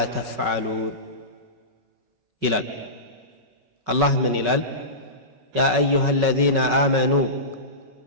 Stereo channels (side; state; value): left; late; 5.4 ms